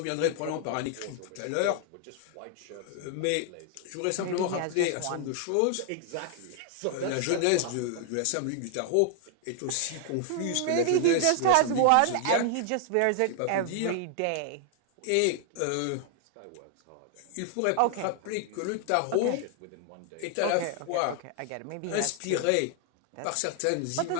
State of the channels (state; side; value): different; both; correlation 0.00